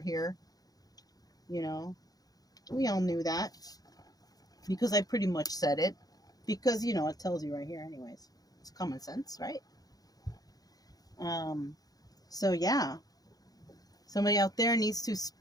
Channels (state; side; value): late; right; 0.18 ms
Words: here. You know, we all knew that because I pretty much said it. Because, you know, it tells you right here, anyways. It's common sense, right? So, yeah. Somebody out there needs to